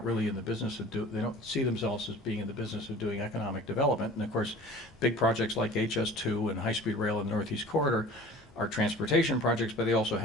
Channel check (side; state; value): both; normal; correlation 0.44